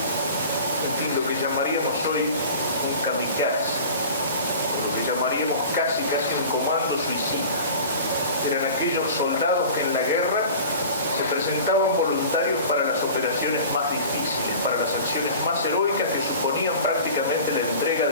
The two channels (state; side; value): inverted; both; correlation -0.40